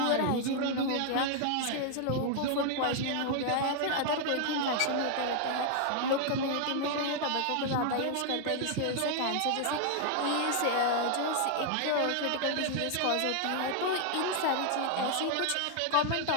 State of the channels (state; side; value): different; both; correlation 0.00